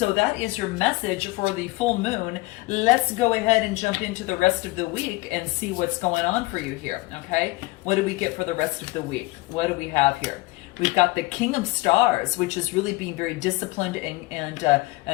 that is your message for the full moon. Let's go ahead and jump into the rest of the week and see what's going on for you here, okay? What do we get for the rest of the week? What do we have here? We've got the King of Stars, which is really being very disciplined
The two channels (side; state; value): right; quieter; 22.2 dB